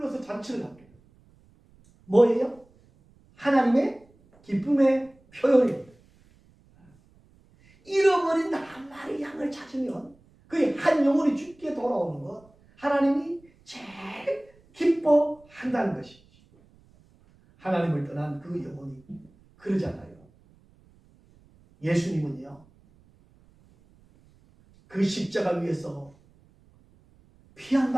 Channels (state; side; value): noise; right; rumble, 30 dB below the sound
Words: 잔치를 합니다. 뭐예요? 하나님의 기쁨의 표현입니다. 잃어버린 한 마리 양을 찾으면 그 한 영혼이 죽게 돌아오는 것, 하나님이 제일 기뻐한다는 것이죠. 하나님을 떠난 그 영혼이 그러잖아요. 예수님은요, 그 십자가 위에서 피 한